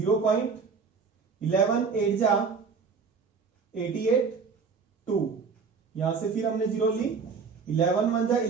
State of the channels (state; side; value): quieter; left; 5.3 dB